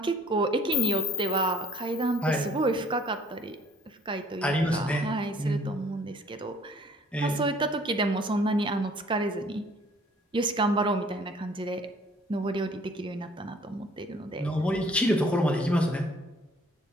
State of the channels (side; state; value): both; normal; correlation 0.55